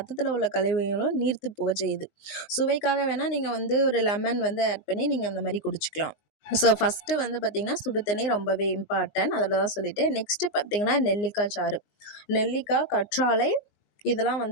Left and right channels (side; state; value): right; late; 19 ms